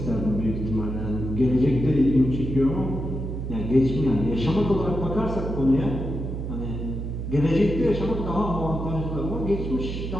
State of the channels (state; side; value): noise; right; hum, 5 dB below the sound